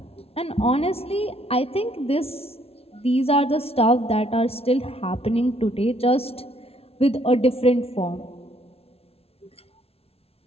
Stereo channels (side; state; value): right; late; 0.29 ms